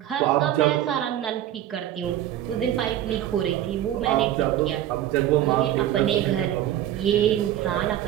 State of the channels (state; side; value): quieter; left; 12.3 dB